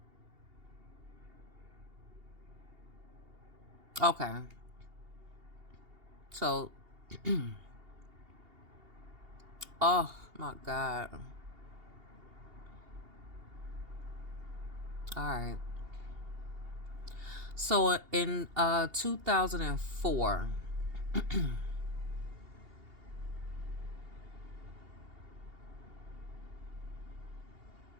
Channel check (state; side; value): late; left; 2.8 ms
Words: Okay. So, oh my God. All right. So in 2004,